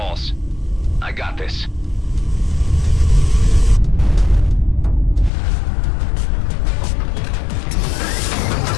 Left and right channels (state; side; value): drops out; right; at 5.3 s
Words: I got this.